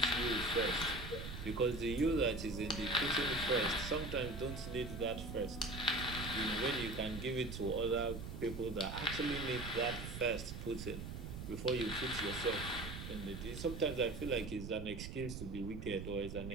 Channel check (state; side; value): noise; right; rumble, 8 dB below the sound